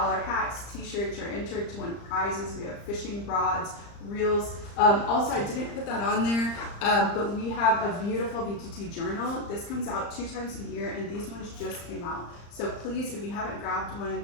hats, t-shirts, you're entered to win prizes. We have fishing rods, reels. Also, I didn't put that on there, but we have a beautiful BTT journal. This comes out 2 times a year, and these ones just came out. So please, if you haven't grabbed one,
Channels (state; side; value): late; right; 35 ms